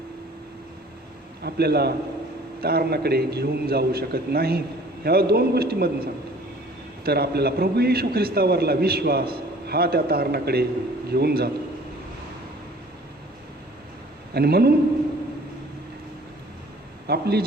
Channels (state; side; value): normal; both; correlation 0.51